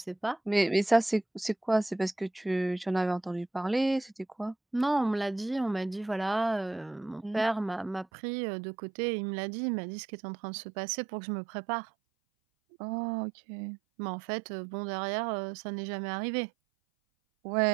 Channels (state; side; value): drops out; left; at 8.1 s